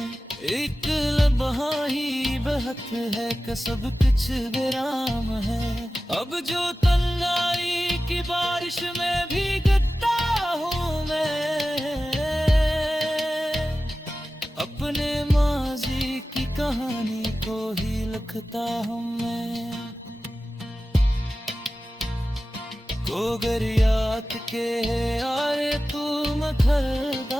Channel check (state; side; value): normal; both; correlation 0.95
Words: एक लम्हा ही बहत है कि सब कुछ विराम है। अब जो तन्हाई की बारिश में भीगता हूँ मैं, अपने माजी की कहानी को ही लिखता हूँ मैं। गोगरियात के यारे तू